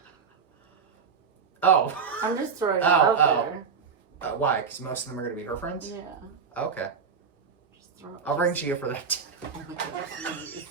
Oh. I'm just throwing it Oh, out oh. there. Why? Because most of them are going to be her friends? Yeah. Okay. Just throw it. I'll ring Gia for that. Oh my god, please.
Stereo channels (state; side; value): quieter; left; 6.0 dB